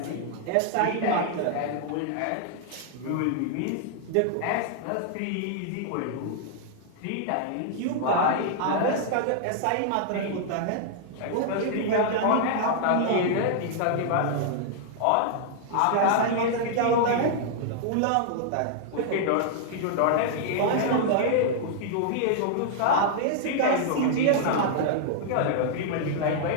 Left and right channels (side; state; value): both; different; correlation -0.01